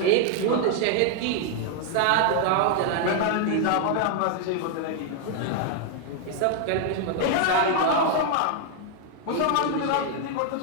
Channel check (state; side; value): different; both; correlation 0.00